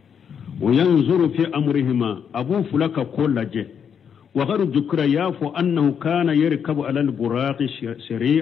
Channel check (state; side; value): quieter; right; 7.6 dB